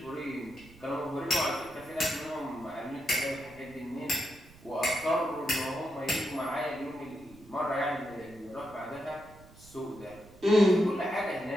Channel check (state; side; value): noise; right; rumble, 22 dB below the sound